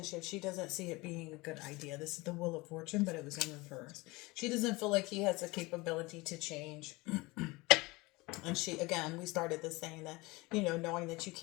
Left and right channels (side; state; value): right; quieter; 23.1 dB